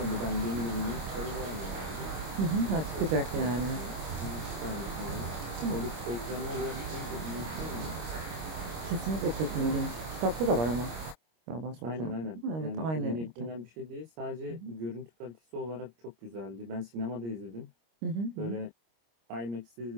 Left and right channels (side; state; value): left; late; 25 ms